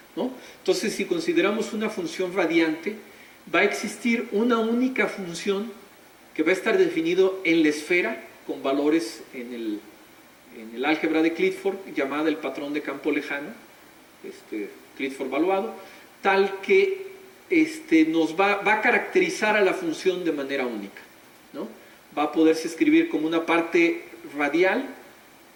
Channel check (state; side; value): identical; both; correlation 1.00